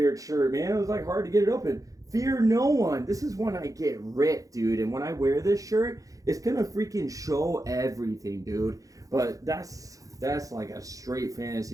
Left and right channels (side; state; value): left; late; 0.17 ms